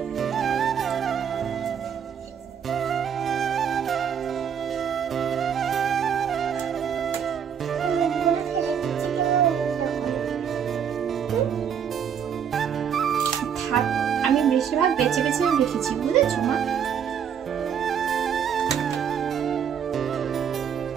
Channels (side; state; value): left; quieter; 8.0 dB